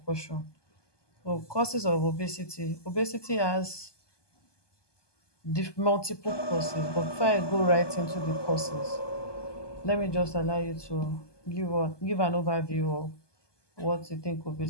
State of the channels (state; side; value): late; right; 1.2 ms